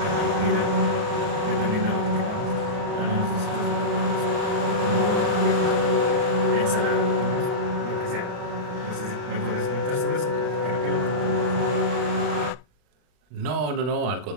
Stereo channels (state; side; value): late; left; 39 ms